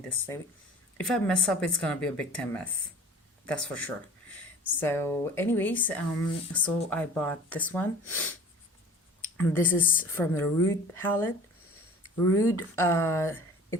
this thing. If I mess up, it's gonna be a big time mess. That's for sure. So anyways, so I bought this one. This is from the Rude palette. Rude,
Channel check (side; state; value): both; normal; correlation 0.44